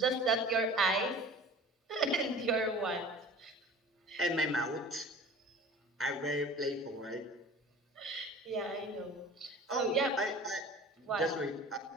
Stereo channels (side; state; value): both; normal; correlation 0.42